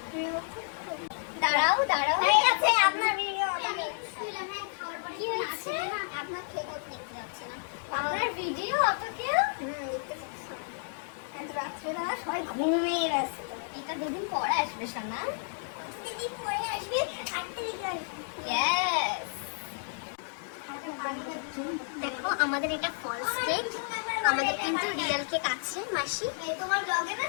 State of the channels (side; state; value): right; silent; digital silence